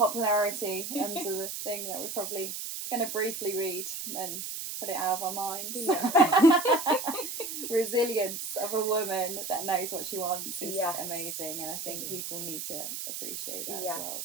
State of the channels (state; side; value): noise; right; hiss, 6 dB below the sound